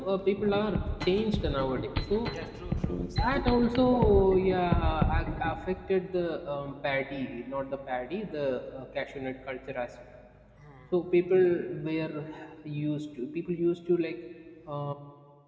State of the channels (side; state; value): both; identical; correlation 1.00